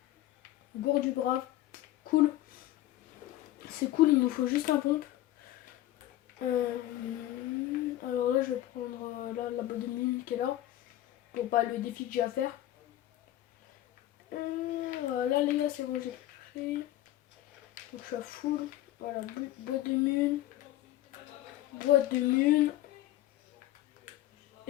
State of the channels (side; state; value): right; quieter; 14.5 dB